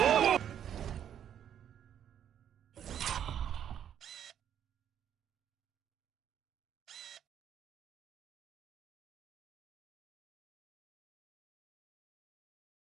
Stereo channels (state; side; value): quieter; left; 9.5 dB